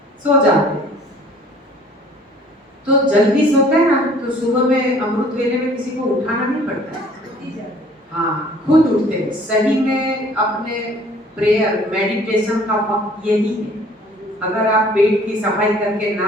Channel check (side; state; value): both; normal; correlation 0.53